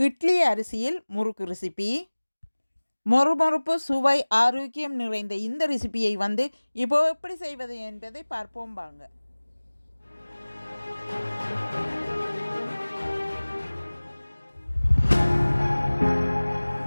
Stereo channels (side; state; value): both; inverted; correlation -1.00